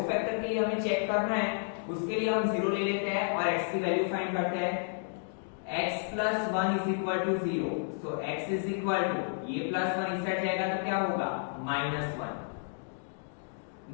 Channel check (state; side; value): silent; right; digital silence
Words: फैक्टर के लिए हमें चेक करना है उसके लिए हम 0 ले लेते हैं और x की वैल्यू फाइंड करते हैं। x plus 1 is equal to 0, so x is equal to, ये plus 1 इस साइड जाएगा तो क्या होगा? -1।